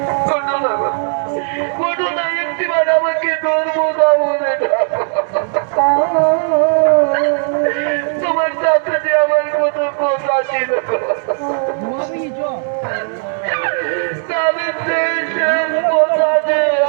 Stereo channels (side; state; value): left; silent; digital silence